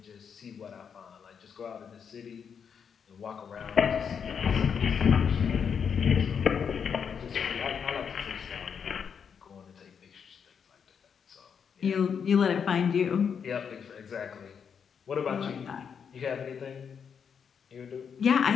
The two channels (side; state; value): right; quieter; 7.0 dB